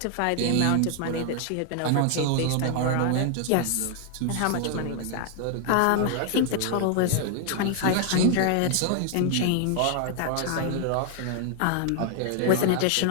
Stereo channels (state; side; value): different; both; correlation 0.00